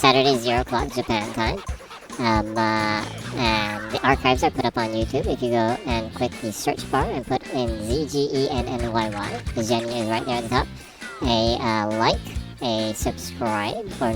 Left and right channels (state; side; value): identical; both; correlation 1.00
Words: 0 o'clock Japan time. And the archives are put up on YouTube. If you go and click the search bar and put in ZGENNYY, the Jenny is right there at the top. A like, a subscribe, or